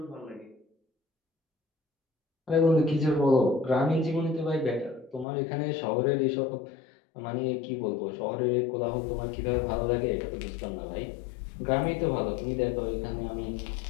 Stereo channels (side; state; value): right; drops out; at 5.2 s